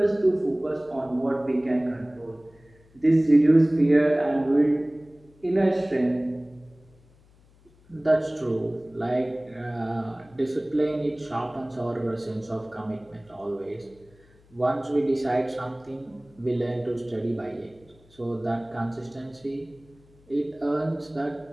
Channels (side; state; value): left; noise; hum, 29 dB below the sound